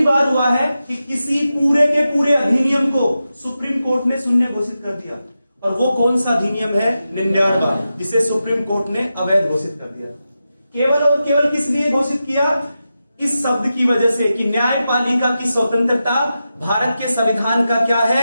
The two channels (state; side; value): inverted; both; correlation -0.90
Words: बार हुआ है कि किसी पूरे के पूरे अधिनियम को सुप्रीम कोर्ट ने शून्य घोषित कर दिया। और वो कौन सा अधिनियम है? 99, जिसे सुप्रीम कोर्ट ने अवैध घोषित कर दिया। केवल और केवल किस लिए घोषित किया? इस शब्द की वजह से कि न्यायपालिका की स्वतंत्रता भारत के संविधान का क्या